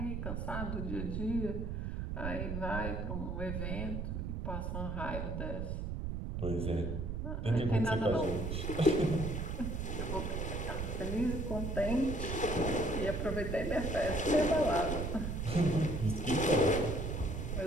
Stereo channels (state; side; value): noise; right; rumble, 3 dB below the sound